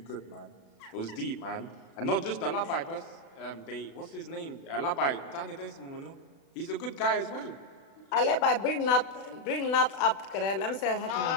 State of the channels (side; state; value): right; late; 36 ms